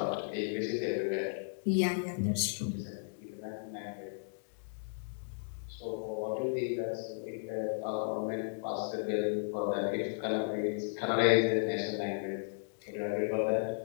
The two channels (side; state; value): right; silent; digital silence